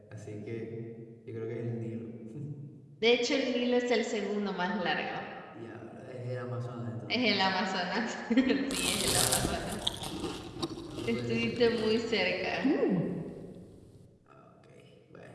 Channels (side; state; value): both; identical; correlation 1.00